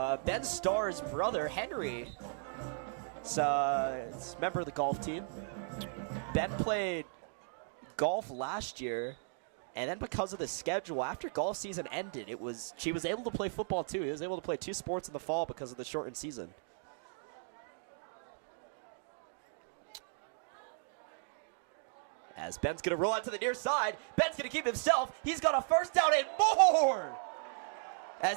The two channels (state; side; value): silent; left; digital silence